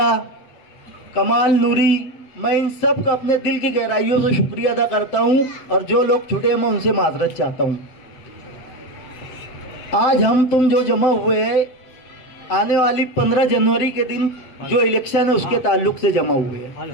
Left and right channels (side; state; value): right; late; 7.7 ms